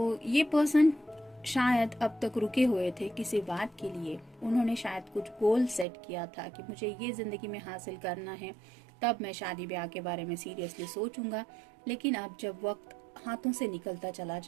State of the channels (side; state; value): left; drops out; at 5.9 s